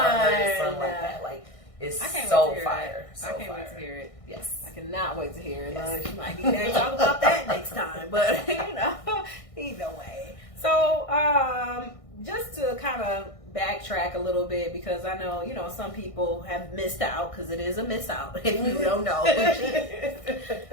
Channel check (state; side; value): late; right; 1.6 ms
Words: heard a song like that. Like, it's so fire. I can't wait to hear it. Yes. I cannot wait to hear it. Yes. You might need to talk about that next time. But, you know, either way. So, just to kind of backtrack a little bit, because I know, you know, some people have missed out, because it is a miss out if you don't know who she is.